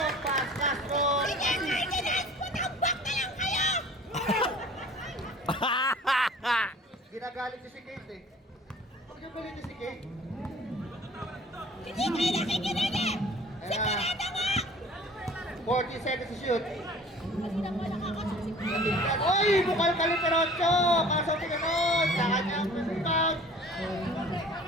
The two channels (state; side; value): normal; both; correlation 0.47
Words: Castro. Ginagalit niya si Kate eh. Huwag niyo galit niya si Kate. Hindi kayo nakikinig eh! Sigurado mo! 40 seconds to shoot. Kasi na wala kakasuksikan. Oy! Bukal Kaliperocho! Kaso ni Ganon! Sa kanyang rebound!